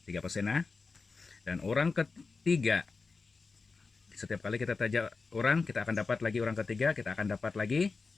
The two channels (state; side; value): quieter; right; 4.4 dB